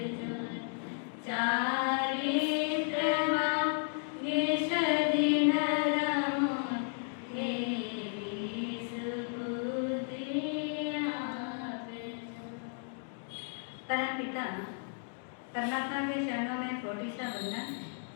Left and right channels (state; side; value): silent; right; 55 dB below the other